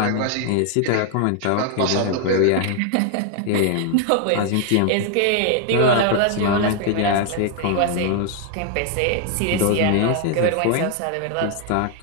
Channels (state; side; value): different; both; correlation 0.00